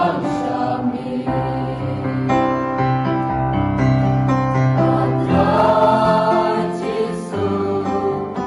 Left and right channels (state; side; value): identical; both; correlation 1.00